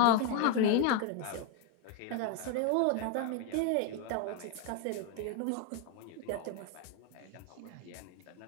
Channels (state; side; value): different; both; correlation 0.01